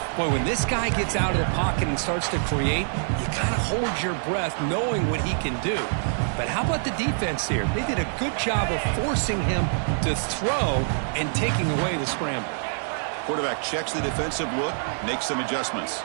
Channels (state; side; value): silent; left; 61 dB below the other